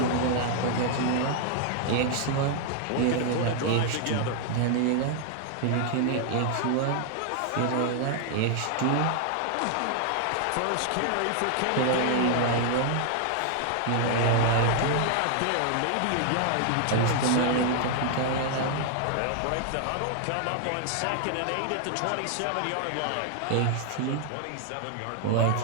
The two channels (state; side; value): different; both; correlation 0.00